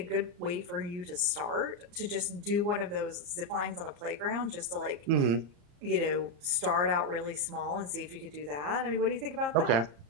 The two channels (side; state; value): left; late; 34 ms